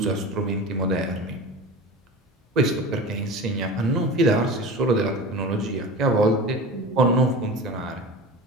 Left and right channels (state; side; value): normal; both; correlation 0.32